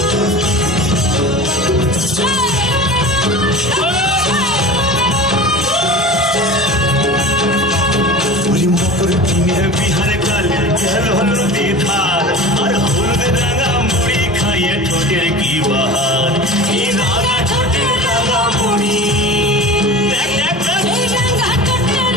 বিহারে কালে গেল নদী ধার আর হলুদ রাঙা মুড়ি খাইয়ে ঠোঁটের কি বাহার এই রাঙা ঠোঁটের রাঙা মুড়ি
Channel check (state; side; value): normal; both; correlation 0.35